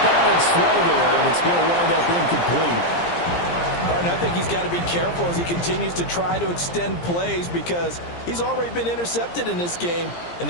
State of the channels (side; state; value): right; late; 17 ms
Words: balance throw there, and it's going to wind up incomplete. Barton, I think he's got to be careful as he continues to try to extend plays because he's already been intercepted in this game. And